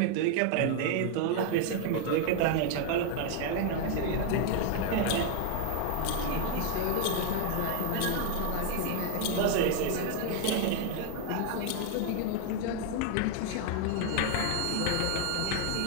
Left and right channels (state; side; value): different; both; correlation 0.00